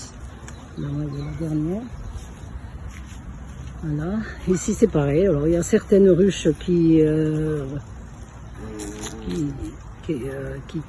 la maille de la dernière. Voilà, ici c'est pareil. Alors il y a certaines ruches qui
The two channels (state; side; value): identical; both; correlation 1.00